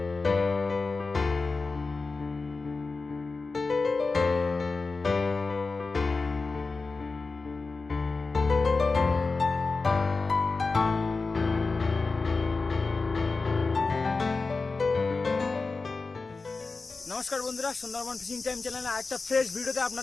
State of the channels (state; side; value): quieter; right; 4.0 dB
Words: নমস্কার বন্ধুরা, সুন্দরবন ফিশিং টাইম চ্যানেলে আরেকটা ফ্রেশ ভিডিওতে